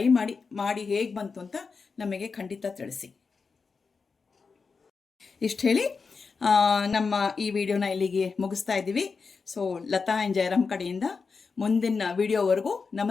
ಮಾಡಿ ಹೇಗೆ ಬಂತು ಅಂತ ನಮಗೆ ಖಂಡಿತ ತಿಳಿಸಿ. ಇಷ್ಟು ಹೇಳಿ ನಮ್ಮ ಈ ವಿಡಿಯೋನ ಇಲ್ಲಿಗೆ ಮುಗಿಸ್ತಾ ಇದ್ದೀವಿ. ಸೊ ಲತಾ ಆ್ಯಂಡ್ ಜಯರಾಮ್ ಕಡೆಯಿಂದ ಮುಂದಿನ ವಿಡಿಯೋವರೆಗೂ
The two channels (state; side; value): quieter; right; 4.9 dB